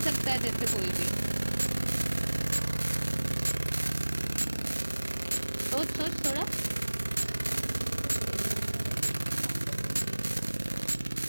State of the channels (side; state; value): both; inverted; correlation -1.00